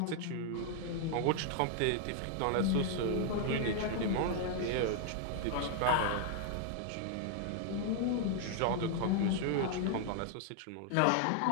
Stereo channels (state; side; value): different; both; correlation 0.00